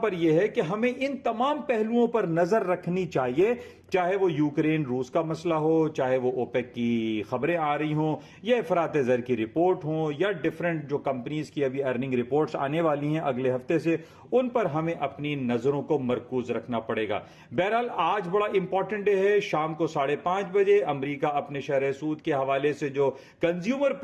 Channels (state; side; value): identical; both; correlation 1.00